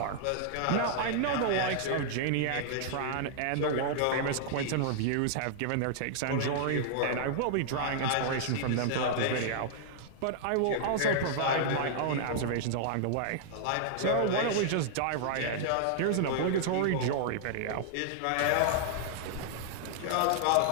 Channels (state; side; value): different; both; correlation -0.01